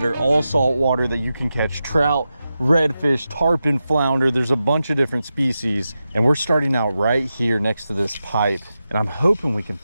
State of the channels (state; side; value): inverted; both; correlation -0.90